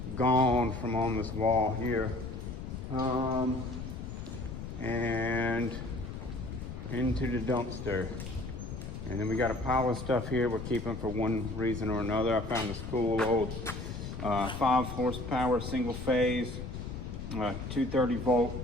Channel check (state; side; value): noise; left; rumble, 8 dB below the sound